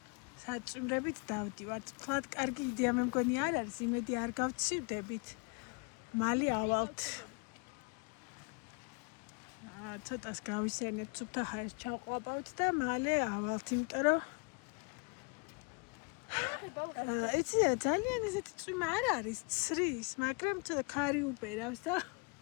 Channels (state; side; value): quieter; right; 34.4 dB